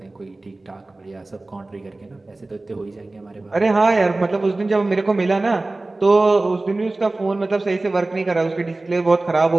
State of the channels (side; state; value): left; quieter; 3.0 dB